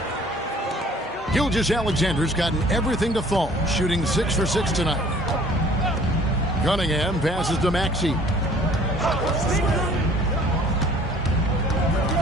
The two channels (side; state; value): both; normal; correlation 0.53